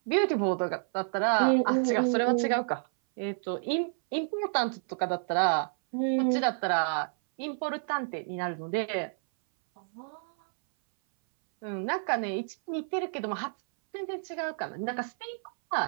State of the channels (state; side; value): silent; left; 58 dB below the other